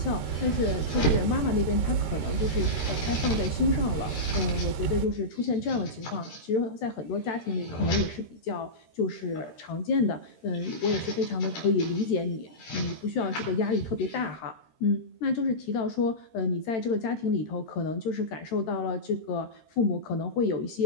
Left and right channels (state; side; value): late; right; 13 ms